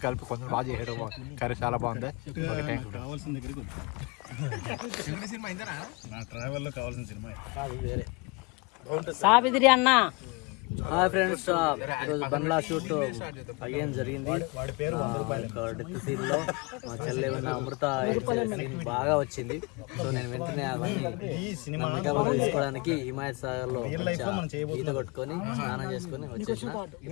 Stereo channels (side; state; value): right; quieter; 28.1 dB